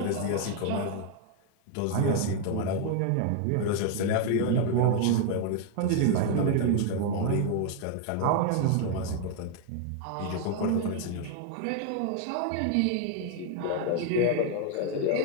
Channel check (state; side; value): different; both; correlation 0.00